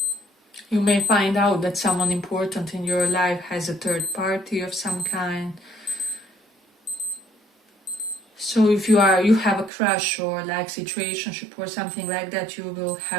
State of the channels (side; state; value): left; drops out; at 9.7 s